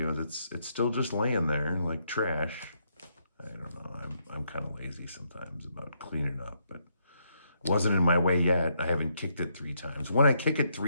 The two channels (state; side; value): inverted; both; correlation -0.76